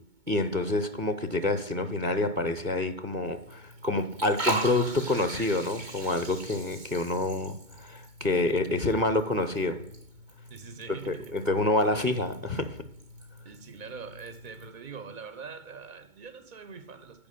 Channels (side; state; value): left; late; 2.2 ms